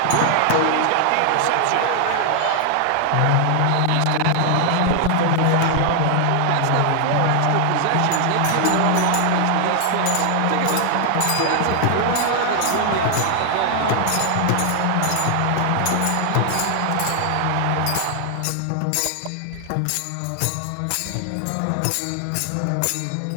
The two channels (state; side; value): different; both; correlation 0.00